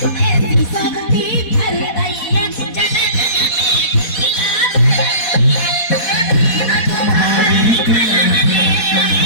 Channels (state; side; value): late; right; 4.1 ms